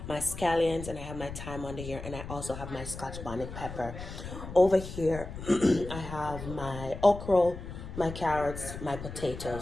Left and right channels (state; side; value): noise; left; rumble, 10 dB below the sound